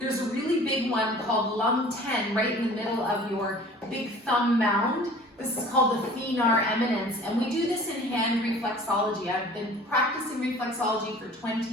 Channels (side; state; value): both; normal; correlation 0.46